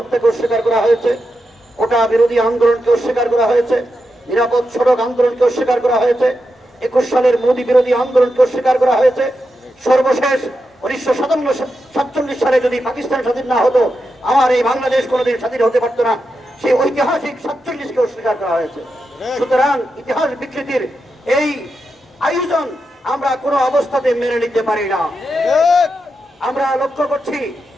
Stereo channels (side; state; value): both; normal; correlation 0.87